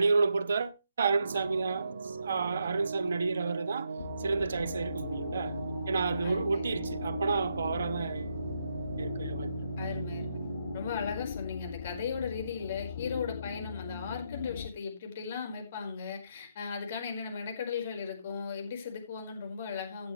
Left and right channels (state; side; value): inverted; both; correlation -0.79